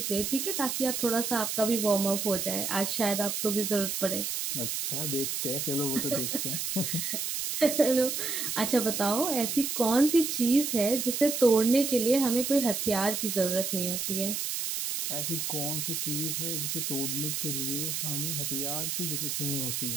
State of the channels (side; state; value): right; noise; hiss, 2 dB below the sound